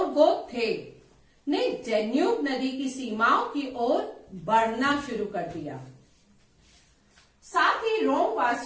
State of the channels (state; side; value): identical; both; correlation 1.00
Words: गोथ थे, ने डेन्यूब नदी की सीमाओं की ओर बढ़ना शुरू कर दिया। साथ ही रोम